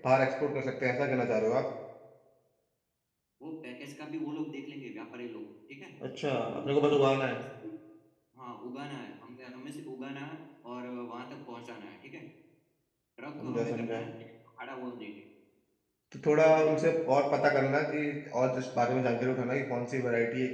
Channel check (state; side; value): identical; both; correlation 1.00